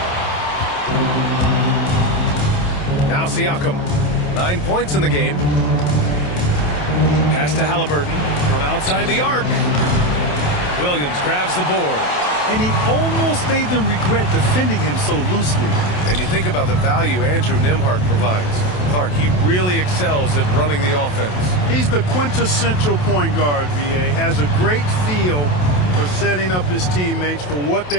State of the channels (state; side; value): late; right; 27 ms